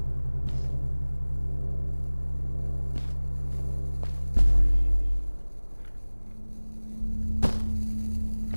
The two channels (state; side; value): inverted; both; correlation -1.00